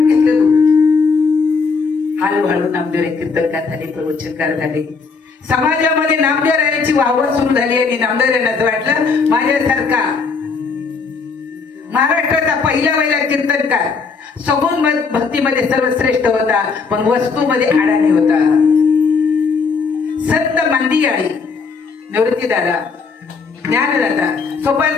घेतलं दूध. हळूहळू नामदेव कीर्तनकार झाले, प्रवचनकार झाले. समाजामध्ये नामदेव रायाची वाहवा सुरू झाली आणि नामदेव रायांना वाटलं माझ्यासारखा महाराष्ट्राचा पहिला कीर्तनकार सगुण भक्तीमध्ये सर्वश्रेष्ठ होता, पण वस्तूमध्ये अडाणी होता. संत मांदियाळी, निवृत्तीदादा, ज्ञानदाता,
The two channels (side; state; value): right; quieter; 4.8 dB